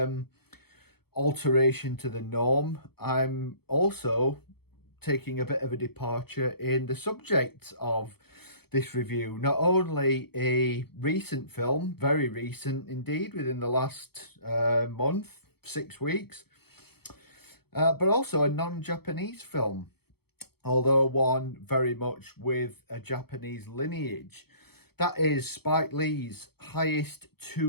alteration to the norm, I'm also taking a bit of a departure in the subject of this review. Not only a recent film, very recent indeed, within the last month, 6 weeks, but also a non-Japanese film, although one very much with a Japanese lineage. That is Spike Lee's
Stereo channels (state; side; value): late; right; 0.96 ms